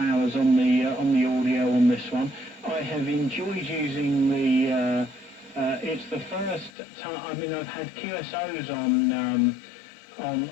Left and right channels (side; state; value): right; drops out; at 6.7 s